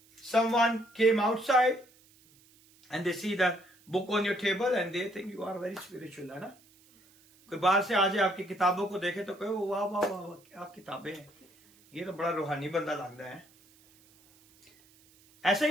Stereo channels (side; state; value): right; noise; hiss, 29 dB below the sound